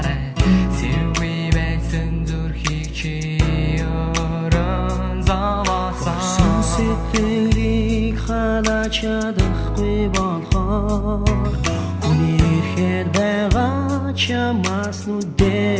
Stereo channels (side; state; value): both; identical; correlation 1.00